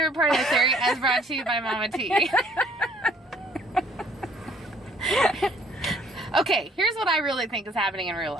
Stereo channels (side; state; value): both; normal; correlation 0.60